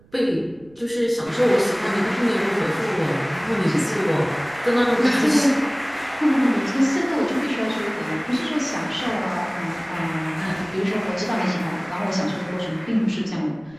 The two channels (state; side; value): noise; right; rumble, 27 dB below the sound